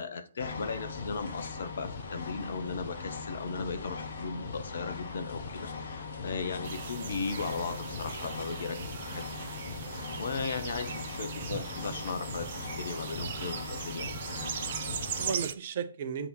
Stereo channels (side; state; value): both; inverted; correlation -0.62